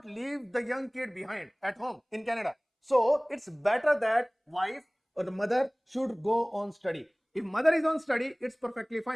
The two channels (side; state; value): both; identical; correlation 1.00